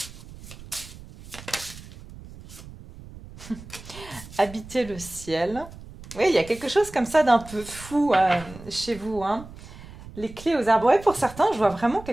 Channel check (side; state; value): right; noise; rumble, 17 dB below the sound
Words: 2? Habiter le ciel. Oui, il y a quelque chose comme ça d'un peu fou chez vous, hein. Les clés aux arbres. Ouais, pour certains, je vois vraiment